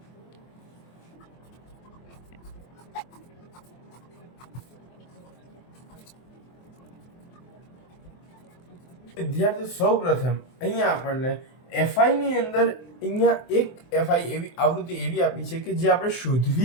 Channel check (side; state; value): right; late; 23 ms